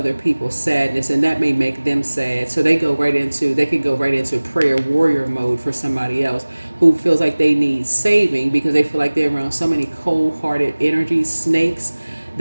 people's sadness, and that may make them sad. So they can go right into prayer warrior mode for somebody else who feels like they need saving because they feel like they're around so many cold-hearted energies, snakes,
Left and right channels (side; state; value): both; inverted; correlation -1.00